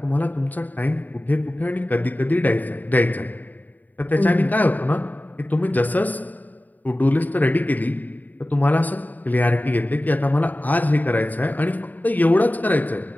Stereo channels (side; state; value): right; late; 0.083 ms